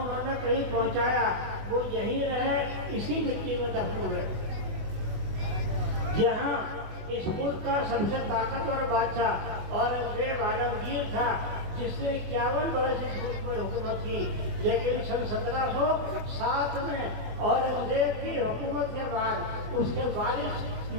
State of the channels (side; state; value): left; late; 24 ms